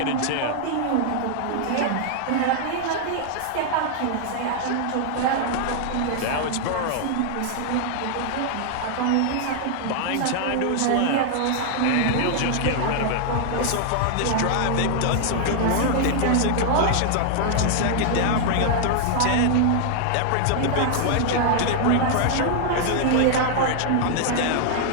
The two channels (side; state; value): both; different; correlation 0.00